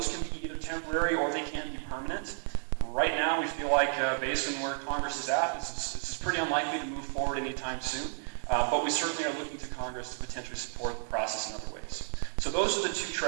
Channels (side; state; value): left; silent; 56 dB below the other